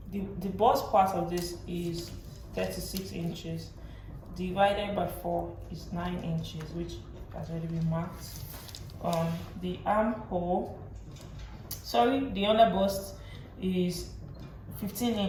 bust part of this is 36 inches. Divided by 4 is 9 inches, which has already been marked. The armhole, the under bust is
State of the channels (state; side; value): identical; both; correlation 1.00